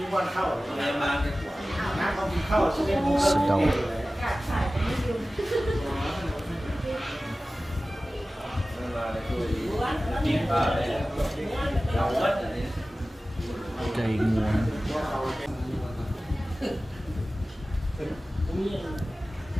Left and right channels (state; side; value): normal; both; correlation 0.96